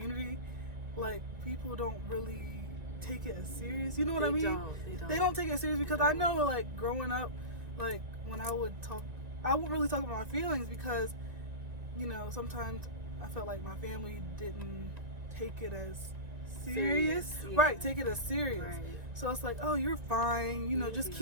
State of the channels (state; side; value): late; left; 1.9 ms